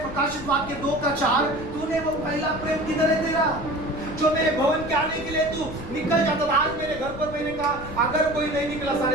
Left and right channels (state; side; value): noise; left; rumble, 13 dB below the sound